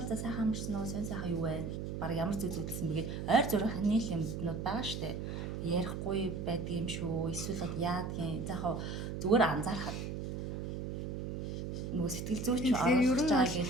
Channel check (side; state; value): right; noise; hum, 4 dB below the sound